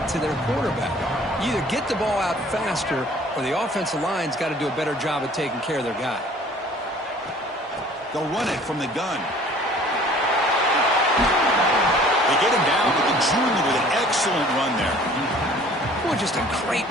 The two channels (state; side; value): normal; both; correlation 0.51